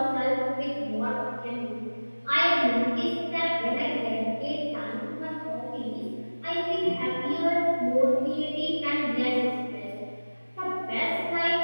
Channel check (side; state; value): both; inverted; correlation -1.00